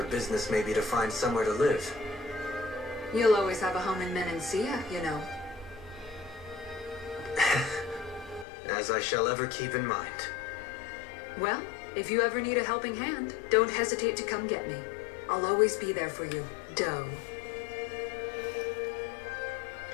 business may be to find somewhere to live. You'll always have a home in Menancia, you know. As I shall ever keep in mind. Well, if you ever need a helping hand, don't hesitate to come get me. I'll always be there for you, Doe.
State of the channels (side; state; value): right; drops out; at 8.5 s